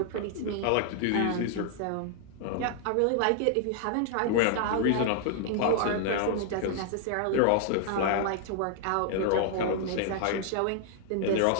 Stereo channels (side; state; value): both; different; correlation 0.00